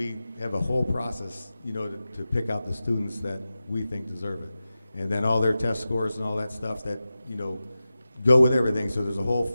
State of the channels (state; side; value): inverted; both; correlation -0.94